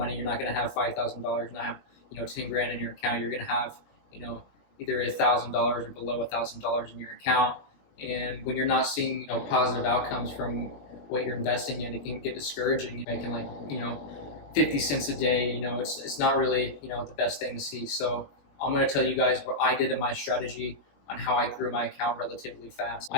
You're not going to have $5,000, not have 10 grand in your account. You're going to have either $1,000 or below $1,000 in your account. And when you're not seeing positive outcomes from what you're investing in, it can get discouraging. You're making 50 cents a day. It's not really the best thing to see. So I'm going to tell you guys what I did in my strategy on how I grew my account relatively fast.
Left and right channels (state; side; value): late; right; 20 ms